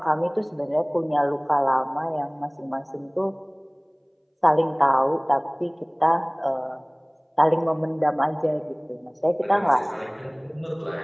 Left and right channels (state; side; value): identical; both; correlation 1.00